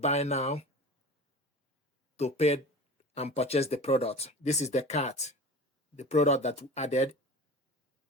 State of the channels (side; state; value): both; normal; correlation 0.35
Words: buy now to pay and purchase the product. This is the cart, the product that we added.